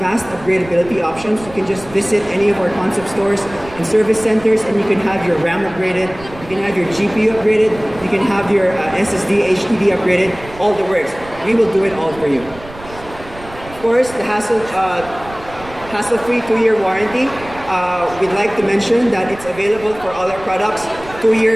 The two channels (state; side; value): noise; right; rumble, 17 dB below the sound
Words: upgradability options. You can just visit any of our concept stores and service centers, and you can have your RAM upgraded, you can have your GPU upgraded, you can have your SSD, HDD upgraded, all the works. We will do it all for you. Of course, the hassle-free 2-year warranty. We'd like to mention that it's available for all our products, 2